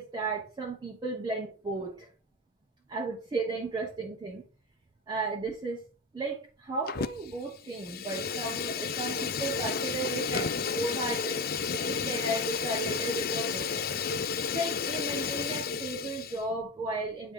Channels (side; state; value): both; normal; correlation 0.22